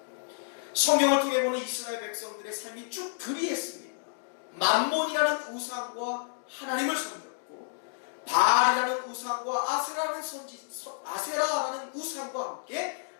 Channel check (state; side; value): silent; right; digital silence